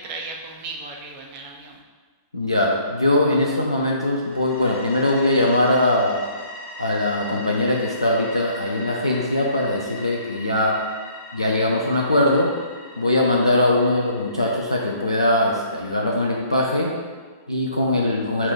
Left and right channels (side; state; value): both; inverted; correlation -0.62